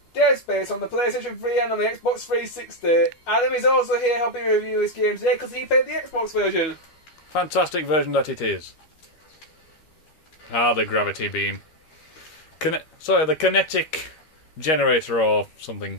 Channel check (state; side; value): late; right; 13 ms